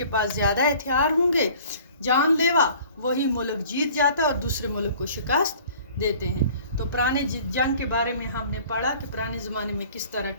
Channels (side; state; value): both; inverted; correlation -0.50